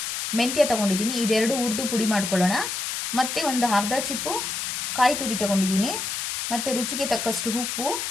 ಮೆಂತ್ಯ ತೊಗೊಂಡಿದ್ದೀನಿ. ಇದೆರಡು ಹುರಿದು ಪುಡಿ ಮಾಡ್ಕೊಳ್ಳೋಣ. ಮತ್ತು ಒಂದು ಅರ್ಧ ಚಿಪ್ಪು ಕಾಯಿ ತುರಿ ತೊಗೊಂಡಿದ್ದೀನಿ. ಮತ್ತು ರುಚಿಗೆ ತಕ್ಕಷ್ಟು ಉಪ್ಪು,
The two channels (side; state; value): left; noise; hiss, 3 dB below the sound